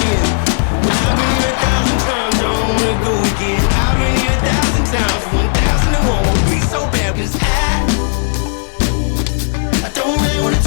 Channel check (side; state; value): right; silent; digital silence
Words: year. I've been here 1,000 times, I don't wanna go again. I've been here 1,000 times, 1,000 and won't be so bad, 'cause I don't really wanna